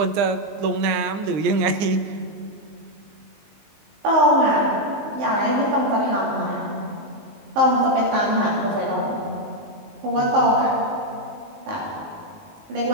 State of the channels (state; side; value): late; left; 19 ms